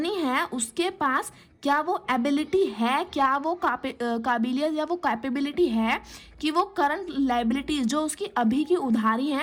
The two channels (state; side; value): identical; both; correlation 1.00